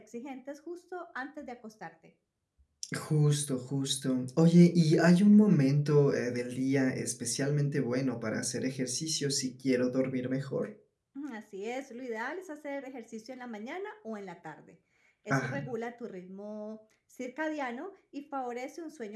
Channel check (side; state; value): both; identical; correlation 1.00